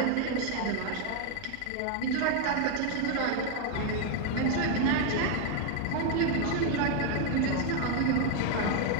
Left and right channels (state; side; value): different; both; correlation 0.00